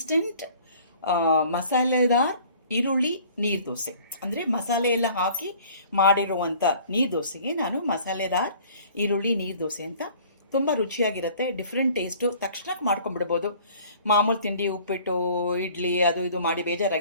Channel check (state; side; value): inverted; both; correlation -0.51